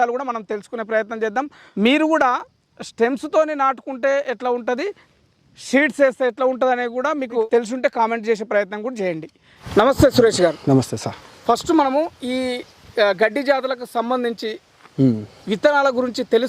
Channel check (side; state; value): both; identical; correlation 1.00